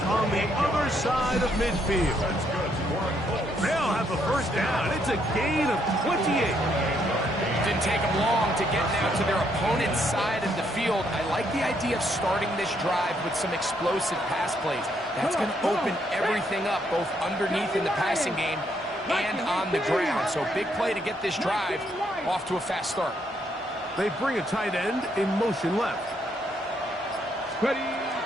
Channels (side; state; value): both; normal; correlation 0.73